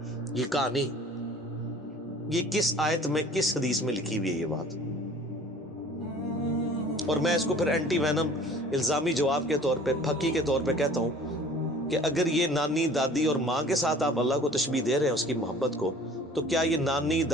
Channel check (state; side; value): normal; both; correlation 0.48